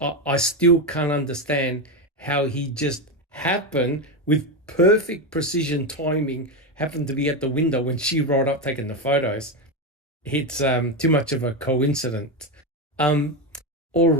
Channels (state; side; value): normal; both; correlation 0.12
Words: I still can't understand how he just happened, with perfect precision timing, happened to be at the window when she rolled up taking the photos. It's too much of a coincidence. All